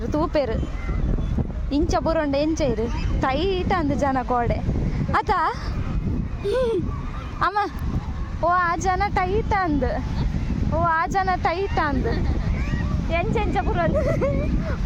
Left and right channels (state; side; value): identical; both; correlation 1.00